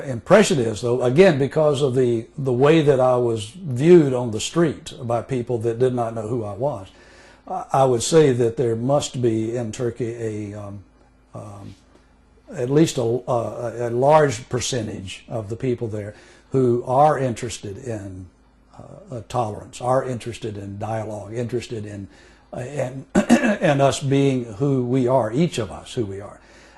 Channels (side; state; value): both; identical; correlation 1.00